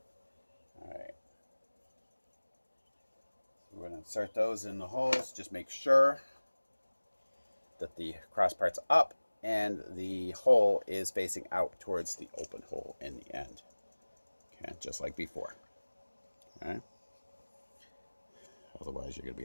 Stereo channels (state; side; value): inverted; both; correlation -1.00